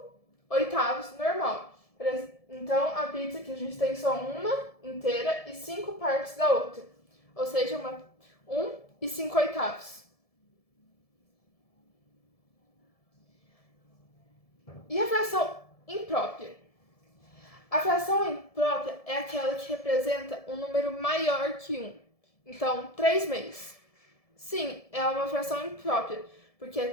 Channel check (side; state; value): right; late; 1.7 ms